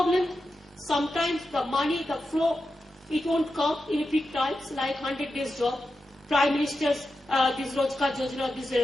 Sometimes the money, the flow, it won't come in big times, like 100 days job. Prime Minister's, this Rozgar Yojana, this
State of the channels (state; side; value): normal; both; correlation 0.90